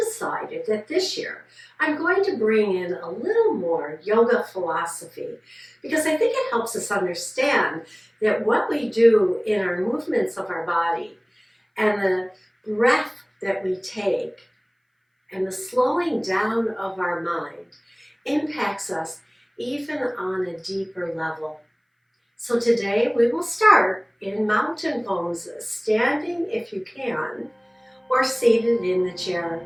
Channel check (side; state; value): both; identical; correlation 1.00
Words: that this year I'm going to bring in a little more yoga philosophy because I think it helps us understand that what we do in our movements of our body and the breath that we take and the slowing down of our mind impacts us even on a deeper level. So today we will start in mountain poses, standing if you can, or seated in the chair.